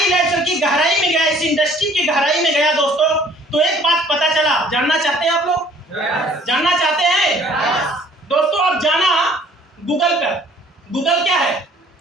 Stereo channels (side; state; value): both; normal; correlation 0.56